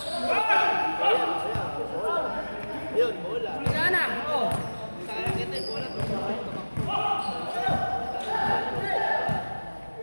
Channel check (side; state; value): both; inverted; correlation -1.00